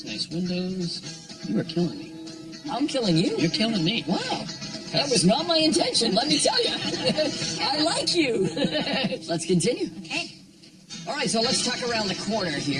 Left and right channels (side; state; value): both; identical; correlation 1.00